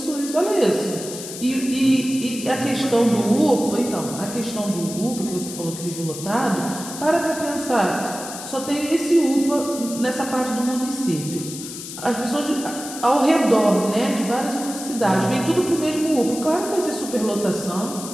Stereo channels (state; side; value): noise; left; hiss, 10 dB below the sound